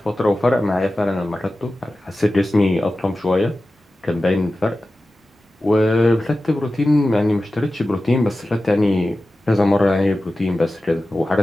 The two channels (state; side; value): normal; both; correlation 0.95